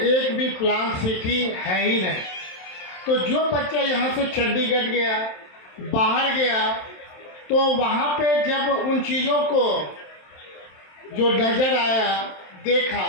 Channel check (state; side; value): late; right; 27 ms